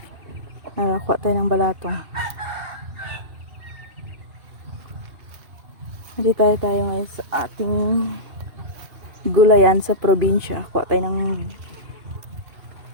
Kuha tayo ng balatong. Hindi tayo ngayon sa ating gulayan sa probinsya. Kuha tayo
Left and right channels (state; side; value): late; left; 2.7 ms